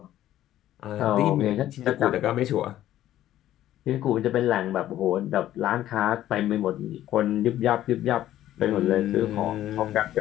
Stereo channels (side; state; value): right; quieter; 13.0 dB